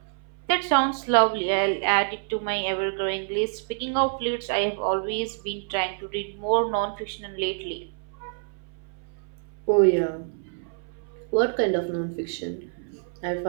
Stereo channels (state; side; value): silent; left; 60 dB below the other